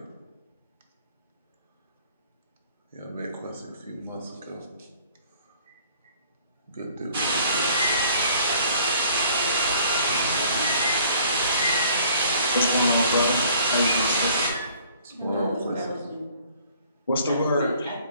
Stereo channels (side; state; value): both; inverted; correlation -0.56